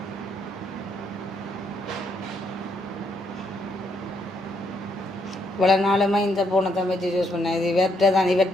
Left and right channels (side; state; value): both; normal; correlation 0.74